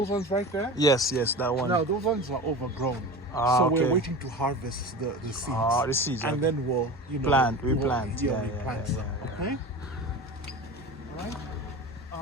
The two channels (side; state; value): both; normal; correlation 0.31